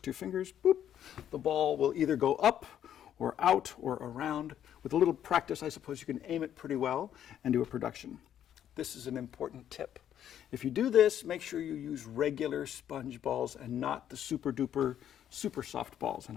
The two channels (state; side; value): quieter; right; 10.3 dB